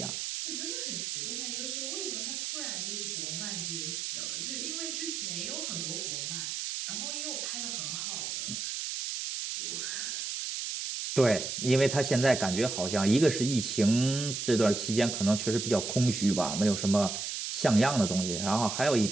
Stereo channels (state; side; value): noise; right; hiss, 4 dB below the sound